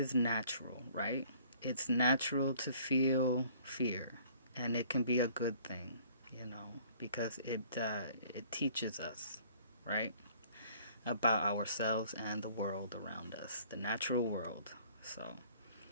natural, right? It's natural to feel fear, and it can be a good thing, you know, because it teaches us, right, about ourselves and the world around us, the natural world. So,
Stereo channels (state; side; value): inverted; both; correlation -0.55